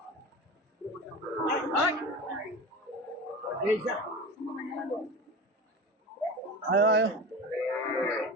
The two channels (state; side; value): normal; both; correlation 0.30